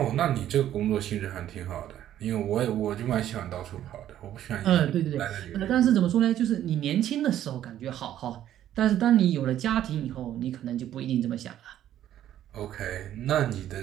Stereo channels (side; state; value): left; quieter; 11.7 dB